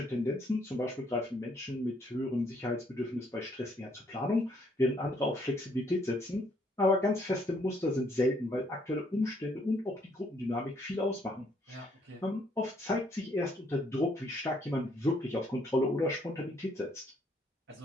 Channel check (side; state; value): both; normal; correlation 0.68